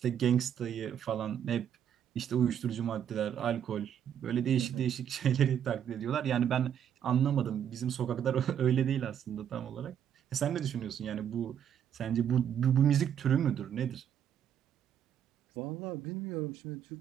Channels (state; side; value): quieter; left; 9.2 dB